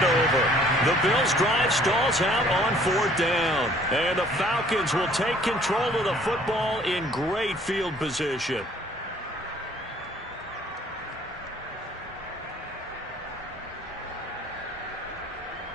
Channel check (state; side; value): normal; both; correlation 0.57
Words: over. The Bills' drive stalls out on 4th down. And the Falcons will take control of the football in great field position.